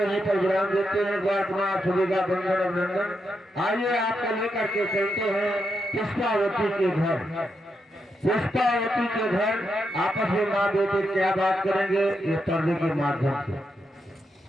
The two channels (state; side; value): normal; both; correlation 0.83